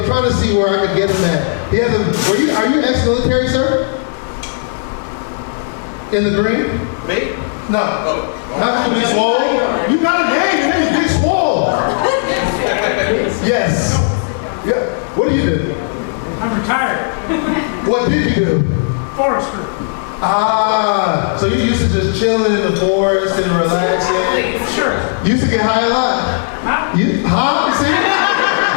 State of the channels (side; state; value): right; silent; digital silence